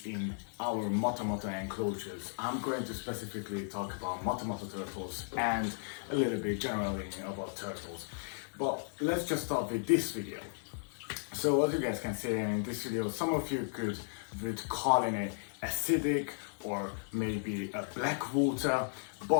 in our moto enclosures. I'm going to specifically talk about moto turtles and a little bit generally about turtles. But let's just start with this video. So as you guys can see in this video, some of you would call it acidic or maybe a black water,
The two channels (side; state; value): right; silent; 54 dB below the other